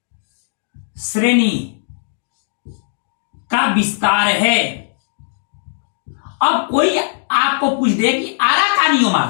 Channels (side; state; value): right; silent; digital silence